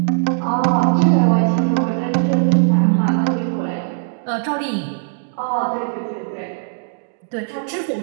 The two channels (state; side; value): silent; left; digital silence